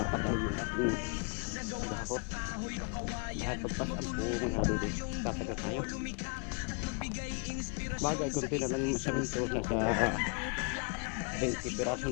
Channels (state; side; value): quieter; right; 36.5 dB